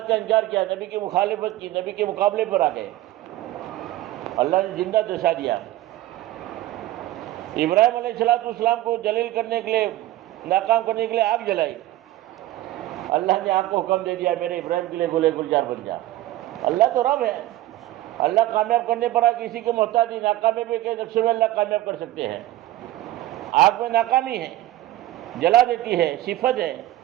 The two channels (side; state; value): left; quieter; 15.6 dB